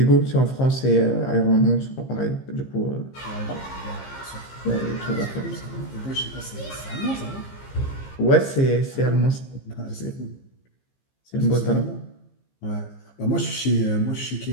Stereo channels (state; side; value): late; right; 15 ms